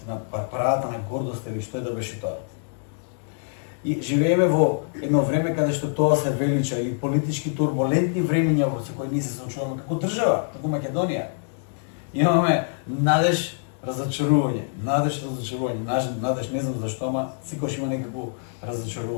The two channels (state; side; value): silent; right; digital silence